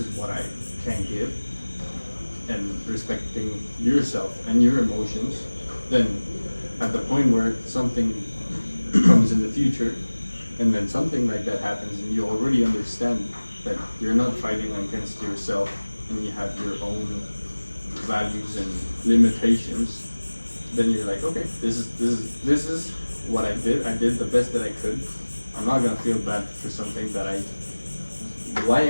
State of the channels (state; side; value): inverted; both; correlation -1.00